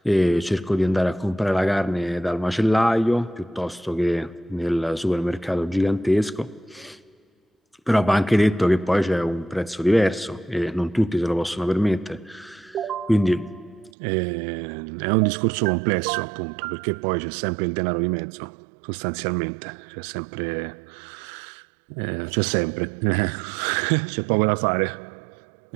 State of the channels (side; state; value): left; drops out; at 13.9 s